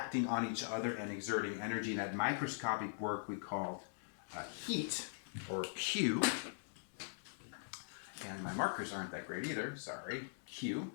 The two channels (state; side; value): silent; right; digital silence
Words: on each other and exerting energy. And that microscopic work we called heat, or Q. And my markers aren't that great either, sorry. Q,